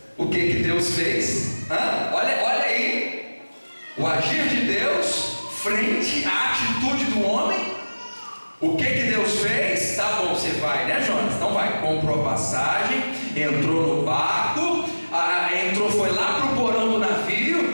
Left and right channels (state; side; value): inverted; both; correlation -1.00